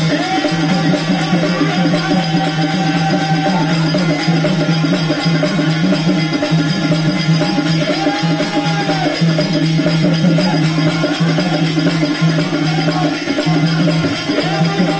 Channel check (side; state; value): both; identical; correlation 1.00